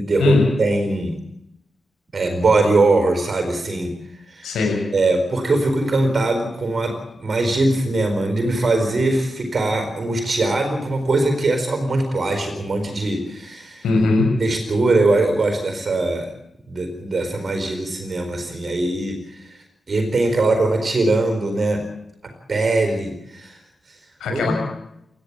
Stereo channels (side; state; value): both; normal; correlation 0.89